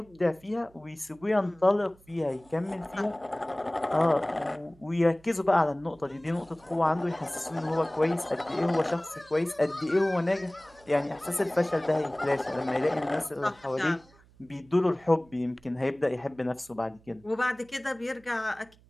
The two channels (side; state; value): right; noise; hum, 28 dB below the sound